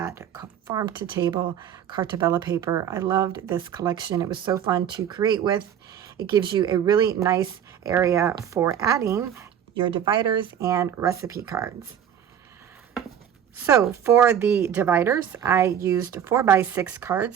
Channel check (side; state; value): left; quieter; 9.2 dB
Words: Farm to Table Cartabella paper. I loved this collection. It was so fun to create with. It gives you a really nice area for adding your dividers and recipe cards. So for the dividers, I used 4x6